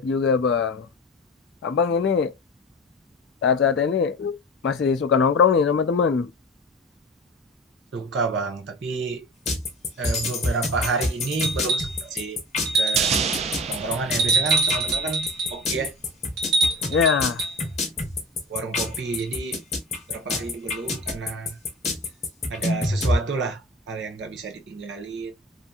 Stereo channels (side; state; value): both; normal; correlation 0.33